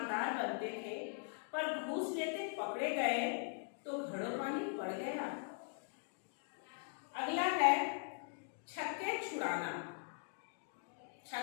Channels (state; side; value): silent; right; 50 dB below the other